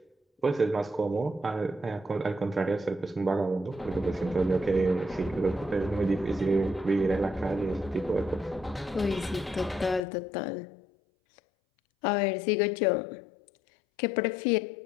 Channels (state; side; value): drops out; right; at 10.0 s